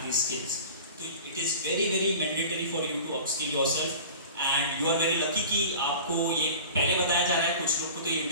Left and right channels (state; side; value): inverted; both; correlation -0.38